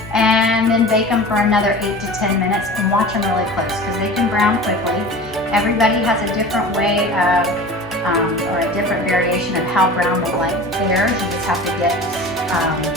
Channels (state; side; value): normal; both; correlation 0.37